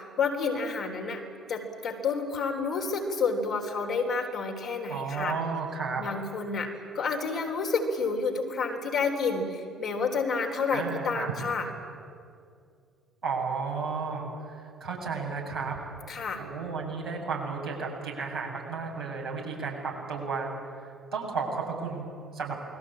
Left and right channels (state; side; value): normal; both; correlation 0.55